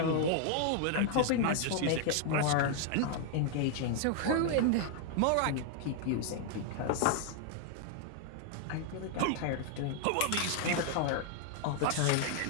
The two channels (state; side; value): different; both; correlation 0.00